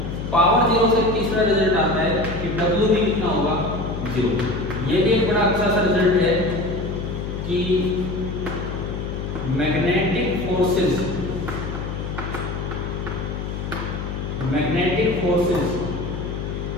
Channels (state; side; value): noise; left; hum, 5 dB below the sound